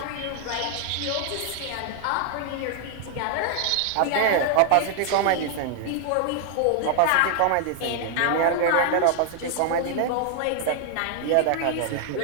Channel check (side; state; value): both; different; correlation 0.00